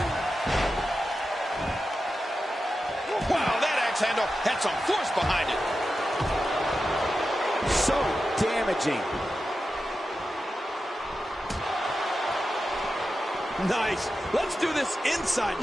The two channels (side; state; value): both; normal; correlation 0.91